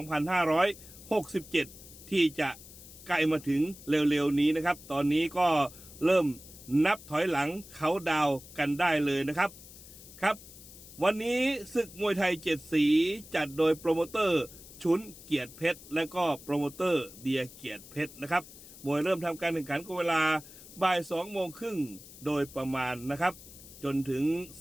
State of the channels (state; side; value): noise; left; hiss, 18 dB below the sound